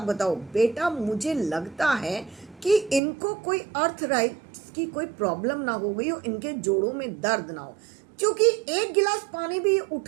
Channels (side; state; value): left; drops out; at 3.0 s